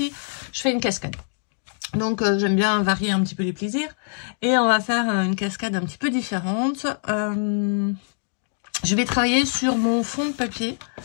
je fais une cascade. Donc, j'aime bien varier un petit peu les plaisirs. Et on va faire une cascade un petit peu différente. Je vais travailler sur mon fond de papier.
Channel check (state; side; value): silent; right; digital silence